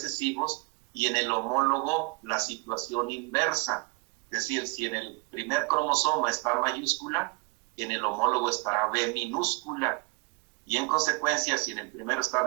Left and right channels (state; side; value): quieter; left; 29.0 dB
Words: y en el homólogo la situación inversa. Es decir, si en el primer cromosoma está mayúscula, en el homólogo estará B minúscula. Y en consecuencia, si en el primero está